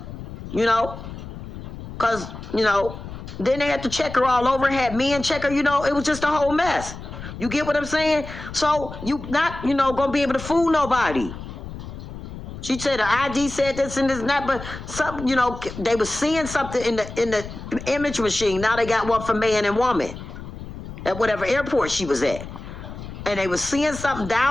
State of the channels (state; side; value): noise; left; rumble, 11 dB below the sound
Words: You know? Because, you know, then they had to check her all over, had men check her, you know, it was just a whole mess. You get what I'm saying? So you not, you know, gonna be able to fool nobody. She said her ID said this and this and that, but some, you know, they were seeing something in the image machine. Now they got one for man and woman at whatever airport she was at. And they were seeing something